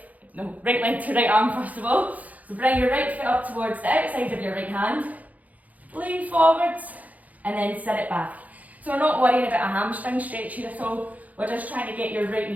No, right leg to right arm first of all. So bring your right foot up towards the outside of your right hand. Lean forwards and then sit it back. So we're not worrying about a hamstring stretch here at all. We're just trying to get your right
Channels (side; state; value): left; late; 0.076 ms